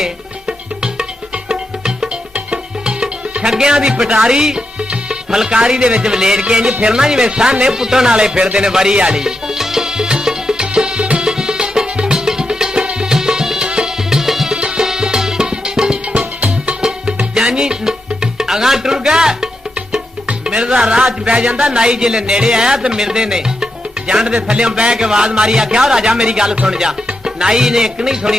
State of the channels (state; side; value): normal; both; correlation 0.85